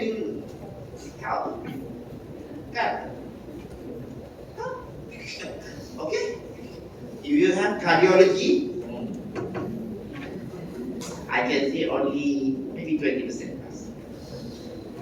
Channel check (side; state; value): both; identical; correlation 1.00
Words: you help? Can? Okay. If you have cardiology, I can say only maybe 20%.